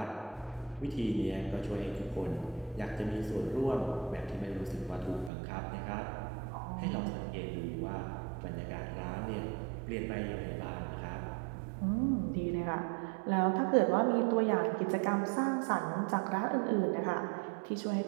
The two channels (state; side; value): drops out; left; at 5.3 s